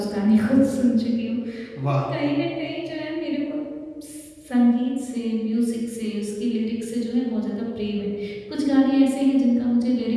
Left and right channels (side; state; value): both; identical; correlation 1.00